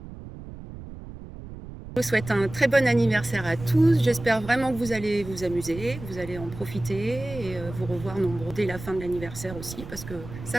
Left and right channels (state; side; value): noise; right; rumble, 13 dB below the sound